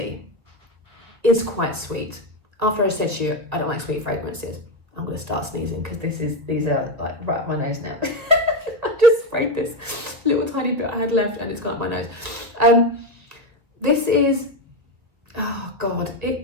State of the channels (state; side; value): late; left; 1.9 ms